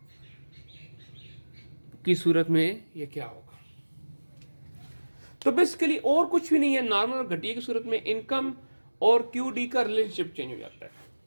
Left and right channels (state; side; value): inverted; both; correlation -1.00